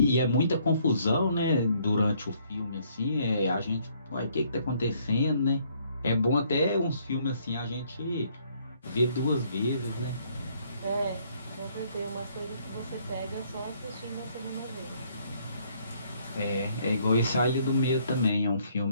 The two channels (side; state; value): both; inverted; correlation -0.66